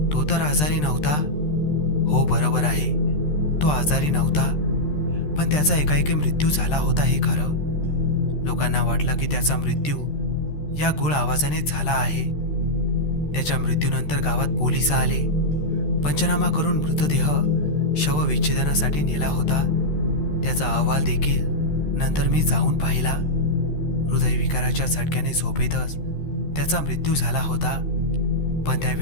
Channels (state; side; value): late; right; 13 ms